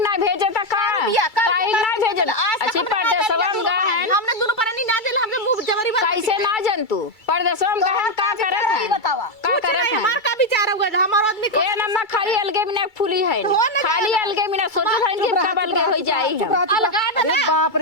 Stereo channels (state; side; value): late; right; 2.3 ms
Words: ना भेजे था का काहे ना भेजे अच्छी परदेसवा में गा है हमने दोनों परानी ना दिल हमने मुंह जमरी बन कैसे ना जन तू परदेसवा में गा है का करत है बतावा का करत है हमार का विचार होगा हमार आदमी ए नम्मा खाली अलगे बिना फूली है खाली अलगे बिना सोचो था कि कब अलगे हो जाई चुप हम रह, चुप रह। अलगा अरे ना। बाप